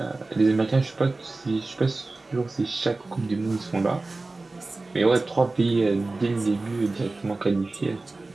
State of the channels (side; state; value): left; quieter; 3.3 dB